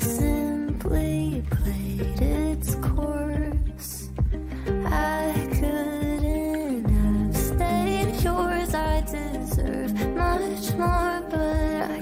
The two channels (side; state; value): both; identical; correlation 1.00